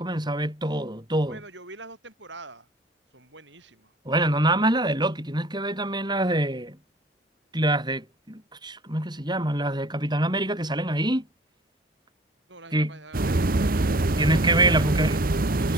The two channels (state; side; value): normal; both; correlation 0.49